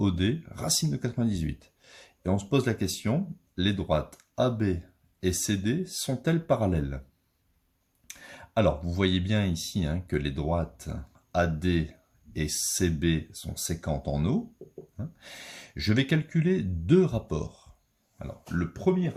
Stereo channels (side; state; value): both; identical; correlation 1.00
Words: racine de 98. Et on se pose la question, les droites AB et CD sont-elles parallèles? Alors, vous voyez bien ici que les droites AD et CB sont séquentes en O. Je vais calculer deux rapports. Alors, le premier